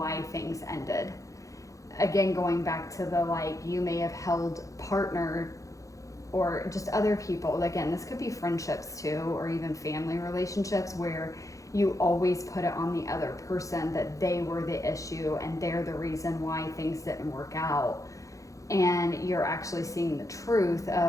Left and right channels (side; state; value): right; late; 0.16 ms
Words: things ended. Again, going back to the, like, you may have held partner or just other people. Again, this could be friendships too, or even family relationships where you always put it on the other person that they were the issue and they're the reason why things didn't work out. And you're actually seeing the truth